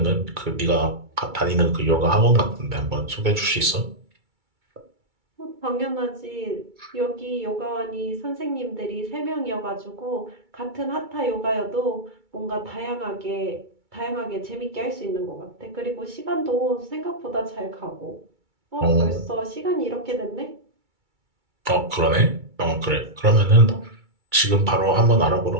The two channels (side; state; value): left; late; 2.3 ms